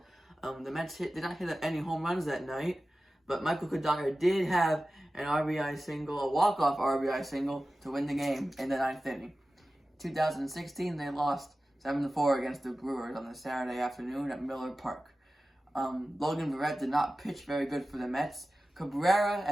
The Mets did not hit any home runs that night, but Michael Kodaka did have an RBI single, a walk-off RBI single, to win the game in the ninth inning. 2016, they lost 7-4 against the Brewers on a Saturday afternoon at Miller Park. Logan Verrett did not pitch very good for the Mets.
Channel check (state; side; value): normal; both; correlation 0.95